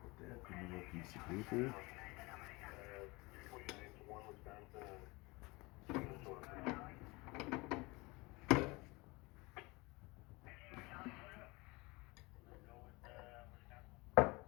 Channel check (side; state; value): right; quieter; 24.4 dB